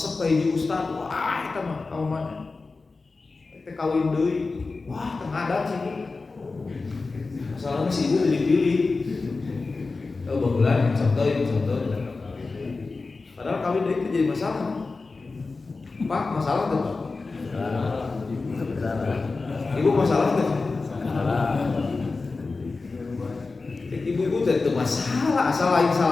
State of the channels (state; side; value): quieter; right; 3.9 dB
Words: kayak di ustad, wah kita mah kamu mana? Kita kawin deui, wah tengah ada sih. Masalahnya si ibu pilih-pilih. Oh bagulan, contoh. Padahal kawin deui itu jadi masalah. Pak, masalah tuh. Ibu masalah tuh. Ibu-ibu itu masalah, asal lain